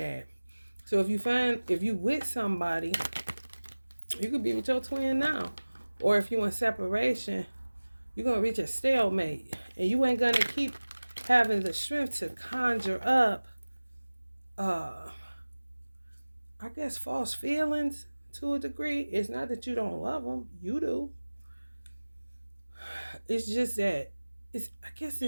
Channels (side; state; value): both; inverted; correlation -1.00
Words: So if you with somebody, you could be with your twin now. Or if you in separation, you're gonna reach a stalemate. And you ain't gonna keep having the strength to conjure up I guess false feelings to a degree. It's not that you don't love them, you do. It's just that I guess